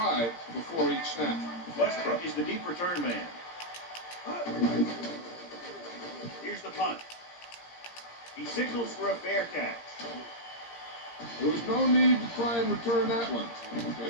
before each snap. Westbrook is the deep return man. Here's the punt. He signals for a fair catch. There was no need to try and return that one, but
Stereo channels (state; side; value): late; right; 17 ms